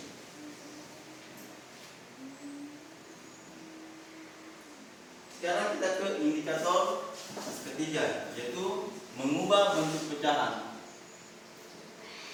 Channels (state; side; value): identical; both; correlation 1.00